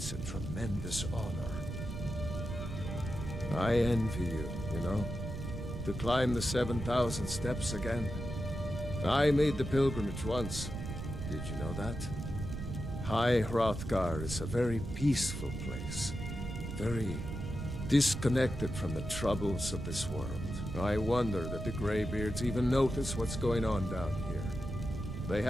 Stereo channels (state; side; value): noise; right; rumble, 6 dB below the sound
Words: a tremendous honor. I envy you, you know, to climb the 7,000 steps again. I made the pilgrimage once. Did you know that? High Hrothgar is a very peaceful place. Very disconnected from the troubles of this world. I wonder that the Greybeards even notice what's going on down here. They